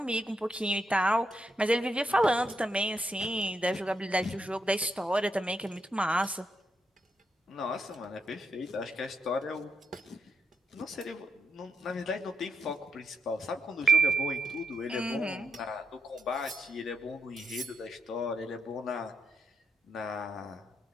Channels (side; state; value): both; normal; correlation 0.82